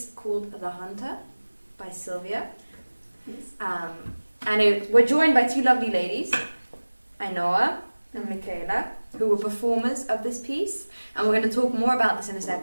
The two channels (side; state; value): both; inverted; correlation -1.00